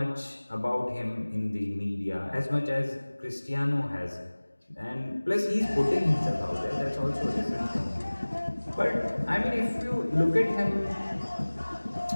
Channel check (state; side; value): inverted; both; correlation -1.00